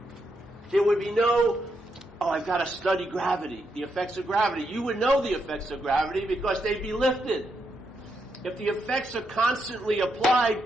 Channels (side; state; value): both; normal; correlation 0.81